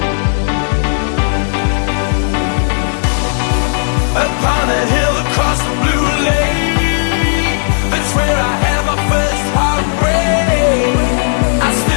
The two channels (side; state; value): right; silent; digital silence